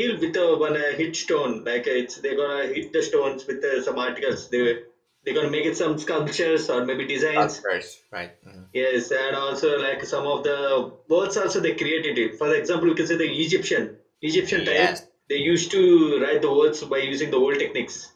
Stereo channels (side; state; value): both; identical; correlation 1.00